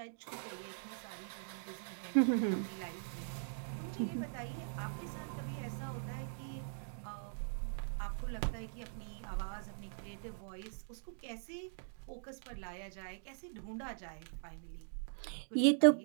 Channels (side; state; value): left; silent; digital silence